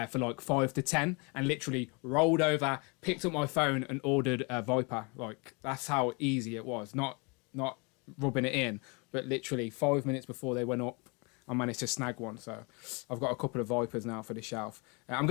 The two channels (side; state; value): right; quieter; 31.1 dB